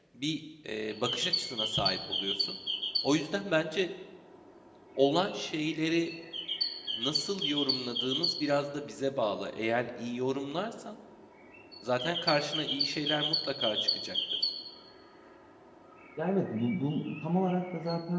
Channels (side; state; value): both; identical; correlation 1.00